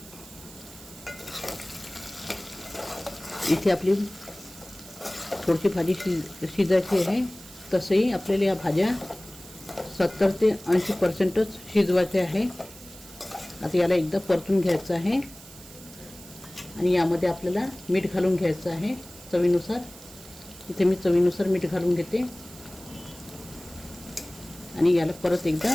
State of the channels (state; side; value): noise; right; hiss, 18 dB below the sound